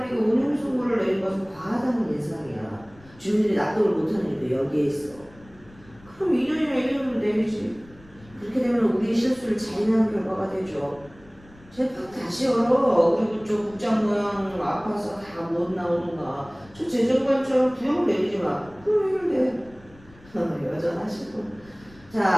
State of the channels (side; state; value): left; noise; rumble, 25 dB below the sound